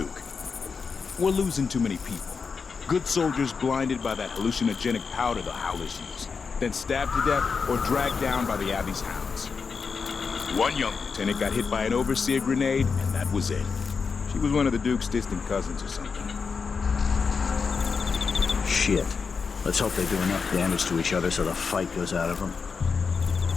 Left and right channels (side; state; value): right; quieter; 5.3 dB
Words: We're losing too many people. Good soldiers blinded by that hallucinogenic powder the Howlers use, then stabbed to death or dragged down by the Abbey's hounds. One young lieutenant got hit by an overseer grenade, and that was it. She was one of the Duke's distant cousins or something. Shit. Let's hope they do enough damage to each other so the fight goes out of them.